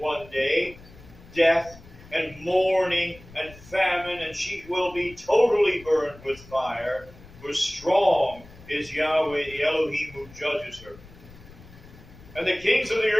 day, death, and mourning, and famine, and she will be totally burned with fire, for strong is Yahweh the Elohim who judges her. And the kings of the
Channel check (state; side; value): noise; left; rumble, 21 dB below the sound